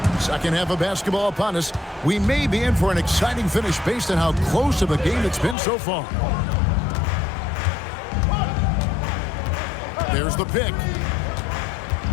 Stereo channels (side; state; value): right; drops out; at 5.6 s